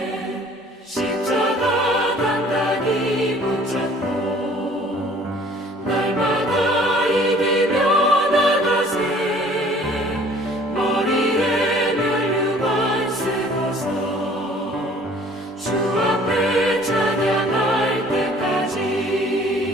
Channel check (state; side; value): normal; both; correlation 0.53